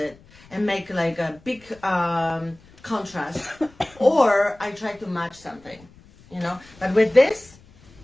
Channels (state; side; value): noise; left; rumble, 26 dB below the sound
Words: and make like a big contrast, or I try to match something, But with this,